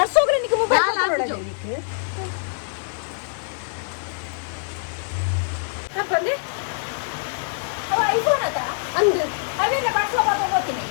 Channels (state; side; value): silent; right; digital silence